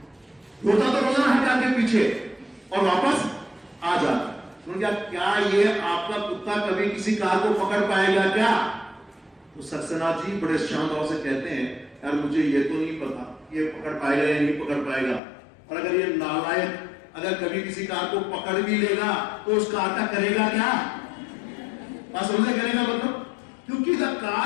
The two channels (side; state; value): right; drops out; at 15.2 s